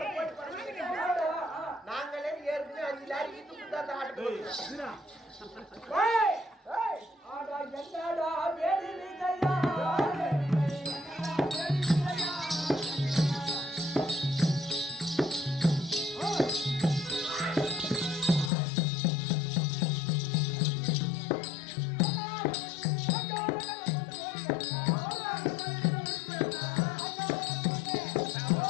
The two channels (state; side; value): drops out; right; at 18.5 s